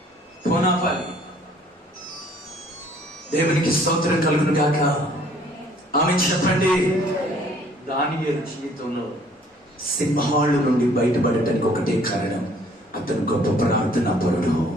పోనాపాలి. దేవునికి స్తోత్రం కలుగును గాక. ఆమె చెప్పండి. దానియేలు జీవితంలో సింహాలు నుండి బయటపడటానికి ఒకటే కారణం, అతను గొప్ప ప్రార్థనా పరుడు.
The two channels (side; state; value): both; normal; correlation 0.58